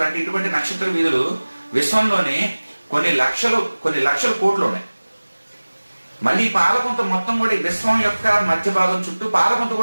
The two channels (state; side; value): inverted; both; correlation -1.00